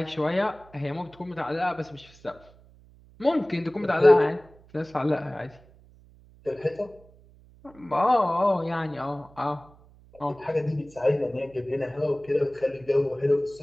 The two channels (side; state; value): right; noise; hum, 26 dB below the sound